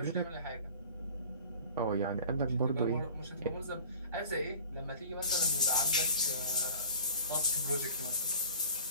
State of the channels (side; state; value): both; inverted; correlation -0.43